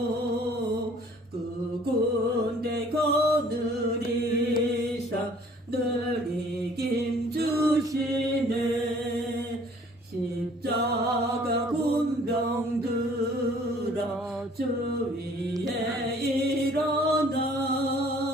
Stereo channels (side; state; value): both; normal; correlation 0.55